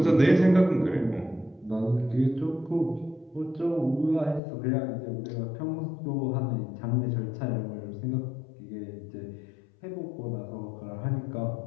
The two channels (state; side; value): drops out; right; at 4.4 s